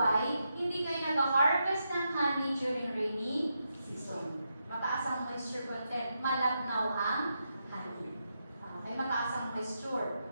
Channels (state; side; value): inverted; both; correlation -0.84